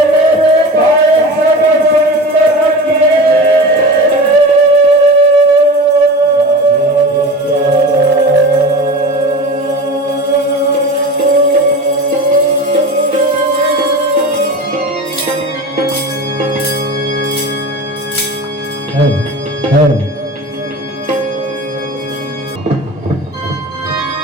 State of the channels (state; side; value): normal; both; correlation 0.32